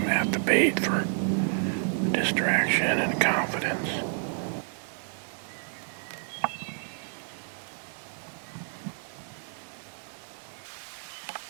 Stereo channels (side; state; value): left; silent; digital silence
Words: at the bait for distraction and confidence.